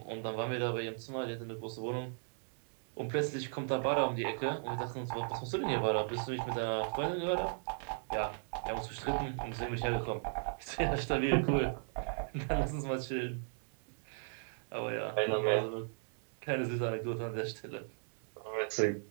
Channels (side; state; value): left; silent; digital silence